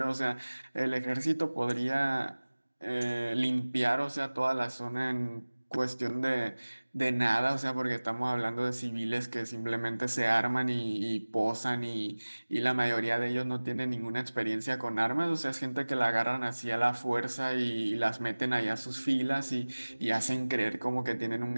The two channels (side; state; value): both; inverted; correlation -1.00